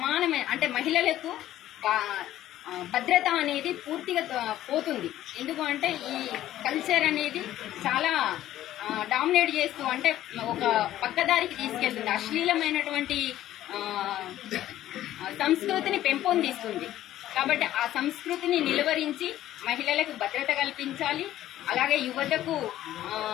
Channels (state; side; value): quieter; right; 13.4 dB